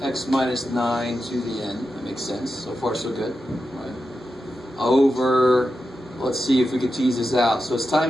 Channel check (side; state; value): both; normal; correlation 0.89